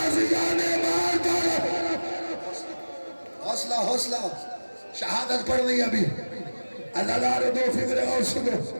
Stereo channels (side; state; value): both; inverted; correlation -1.00